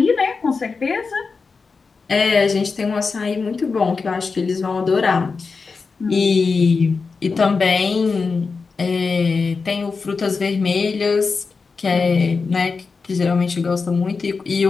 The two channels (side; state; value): right; quieter; 4.7 dB